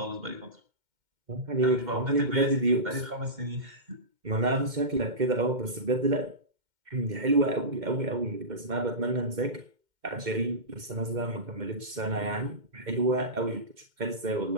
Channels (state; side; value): late; left; 2.1 ms